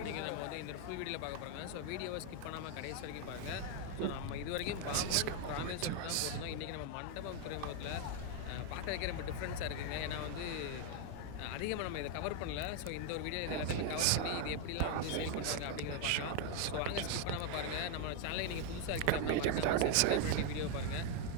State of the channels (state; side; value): different; both; correlation 0.01